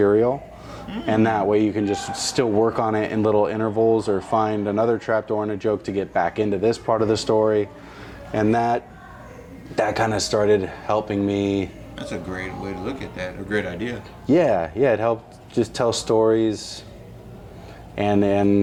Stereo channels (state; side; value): identical; both; correlation 1.00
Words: and that way you can just still work on it in little intervals or find another trap door and a joke to get back into this part of the story. And that kind of started helping me. That's a great way to look at that, a great idea. Yeah, it helped just tell stories